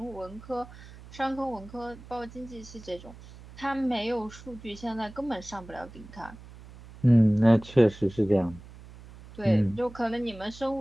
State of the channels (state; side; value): noise; right; hum, 18 dB below the sound